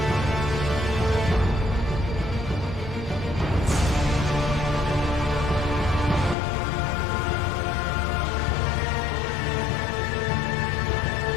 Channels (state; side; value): drops out; right; at 6.4 s